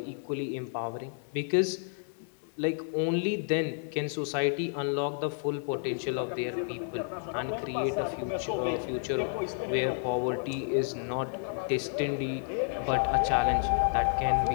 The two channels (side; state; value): right; silent; digital silence